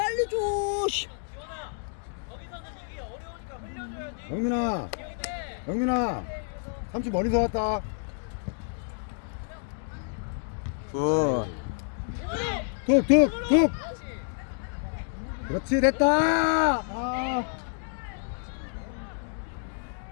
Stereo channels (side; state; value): right; silent; 59 dB below the other